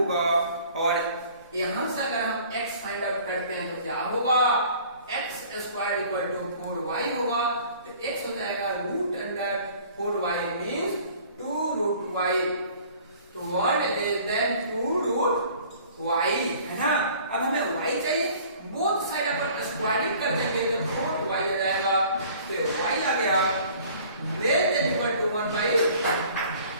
और यहां से अगर हम x फाइंड आउट करते हैं तो क्या होगा, x square equal to 4y होगा, तो x हो जाएगा root under 4y means 2√y, तो 1 लेस देन 2√y है ना। अब हमें y चाहिए, बोथ साइड अपन स्क्वायरिंग कर देंगे तो 4y आ जाएगा, तो y आ गया लेस देन इक्वल टू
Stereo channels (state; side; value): inverted; both; correlation -0.51